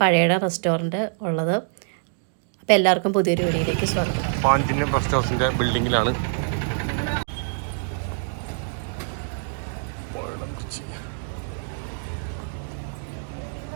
പഴയടം റെസ്റ്റോറൻറ്റ് ഉള്ളത്. അപ്പോൾ എല്ലാവർക്കും പുതിയൊരു വീഡിയോയിലേക്ക് സ്വാഗതം. പാഞ്ചിന്യം റെസ്റ്റോറൻറ്റിൻ്റെ ബിൽഡിങ്ങിലാണ്.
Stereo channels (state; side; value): silent; left; digital silence